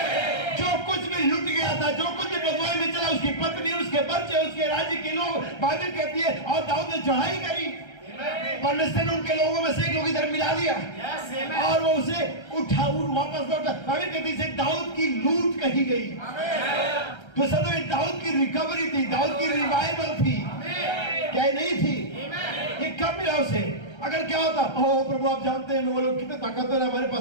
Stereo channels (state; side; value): late; right; 1.3 ms